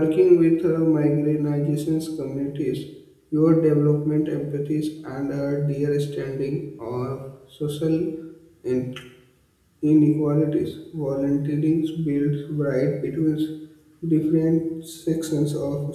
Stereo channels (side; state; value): both; identical; correlation 1.00